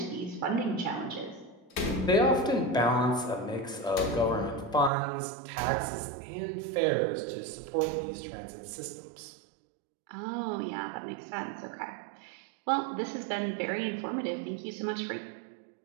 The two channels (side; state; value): left; drops out; at 4.9 s